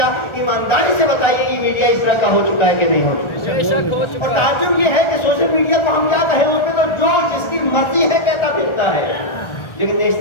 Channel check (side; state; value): right; late; 1.4 ms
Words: ایمانداری سے بتائیے یہ میڈیا اس طرح کا ہو چکا ہے کہ نہیں ہو چکا؟ اور تعجب یہ ہے کہ سوشل میڈیا کو ہم کیا کہیں، اس پہ تو جو جس کی مرضی ہے کہتا پھرتا ہے، لیکن